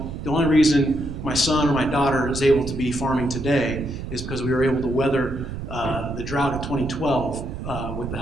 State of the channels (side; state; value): right; noise; rumble, 8 dB below the sound